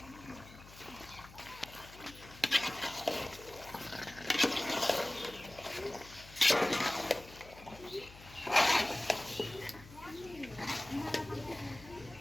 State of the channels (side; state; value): left; noise; hum, 19 dB below the sound